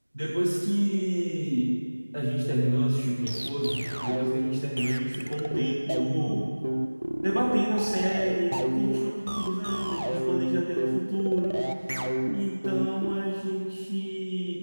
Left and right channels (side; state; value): both; inverted; correlation -1.00